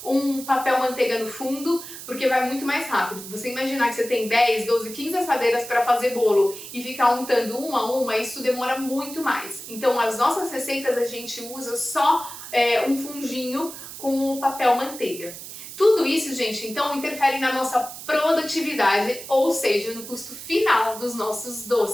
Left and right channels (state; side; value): noise; right; hiss, 12 dB below the sound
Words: um papel manteiga no fundo, porque vai muito mais rápido. Você imaginar que você tem 10, 12, 15 assadeiras para fazer bolo e ficar untando uma a uma, isso demora muito mais. Então, as nossas receitas a gente usa só um fundinho com o papel manteiga. Tudo isso, gente, então interfere na nossa produtividade, ou seja, no custo final dos nossos